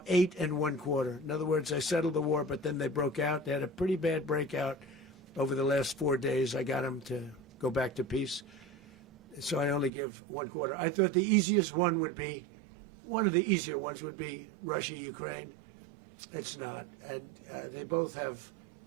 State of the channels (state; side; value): drops out; left; at 9.9 s